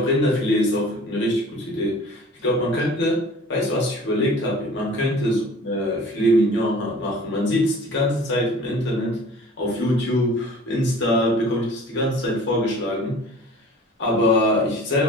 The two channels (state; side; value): normal; both; correlation 0.45